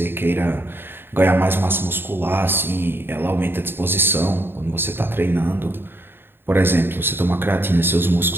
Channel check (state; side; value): late; left; 0.10 ms